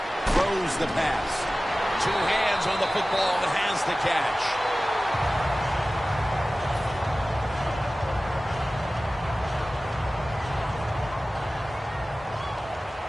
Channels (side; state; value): both; normal; correlation 0.97